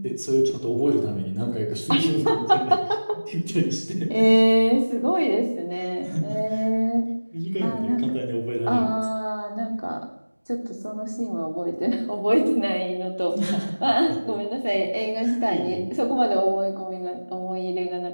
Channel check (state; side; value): inverted; both; correlation -1.00